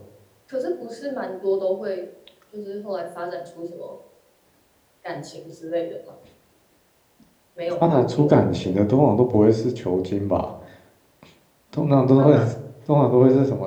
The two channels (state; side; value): identical; both; correlation 1.00